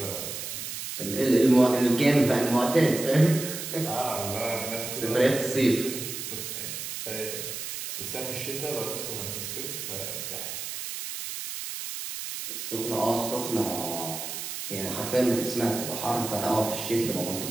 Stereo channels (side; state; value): right; noise; hiss, 6 dB below the sound